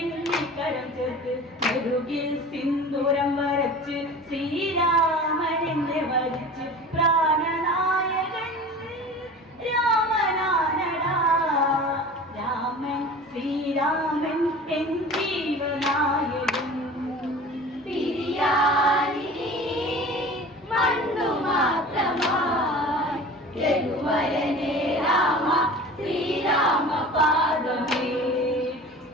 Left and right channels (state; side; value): normal; both; correlation 0.39